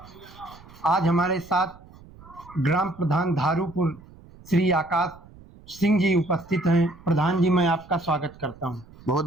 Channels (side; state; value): right; noise; rumble, 22 dB below the sound